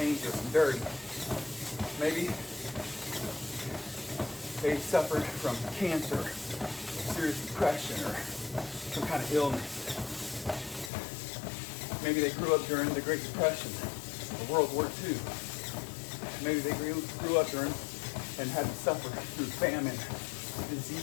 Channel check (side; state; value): right; drops out; at 10.9 s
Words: and dirty. Maybe they suffered from cancer, or serious depression, or some kind of illness. Maybe they grew up during the Great Depression or World War II. Maybe they grew up during and had to suffer through famine,